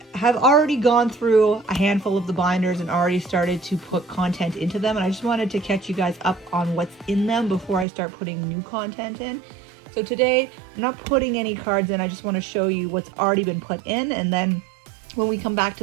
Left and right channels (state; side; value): drops out; left; at 7.9 s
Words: have already gone through a handful of the binders and already started to put content into them, and I just wanted to catch you guys up on what's in them before I start putting new content in. So today I'm not putting any cards in, I just want to show you what's already been put in, and then when we come back